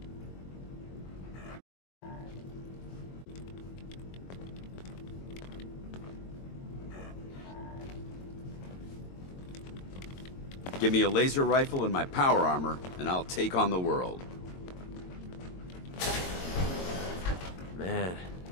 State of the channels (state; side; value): late; right; 22 ms